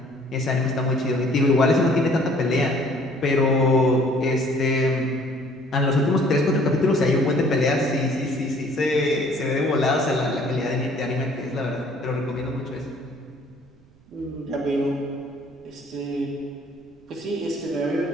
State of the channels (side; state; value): right; noise; rumble, 29 dB below the sound